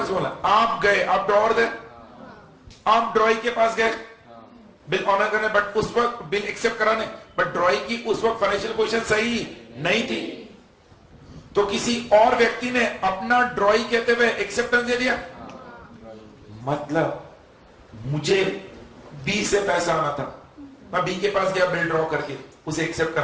बोला। आप गए आप ड्रॉवर थे आप ड्रॉई के पास गए बिल ऑनर करने बट उस वक्त बिल एक्सेप्ट कराने बट ड्रॉई की उस वक्त फाइनेंशियल पोजीशन सही नहीं थी तो किसी और व्यक्ति ने अपना ड्रॉई कहते हुए एक्सेप्टेंस दे दिया। मतलब मुझे बी से पैसा आना था मैं बी के पास गया बिल ड्रॉ करके उसे एक्सेप्ट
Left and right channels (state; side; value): identical; both; correlation 1.00